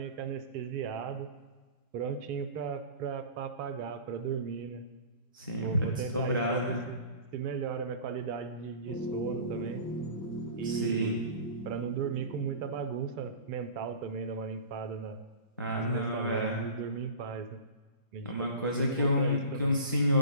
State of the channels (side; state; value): both; inverted; correlation -0.37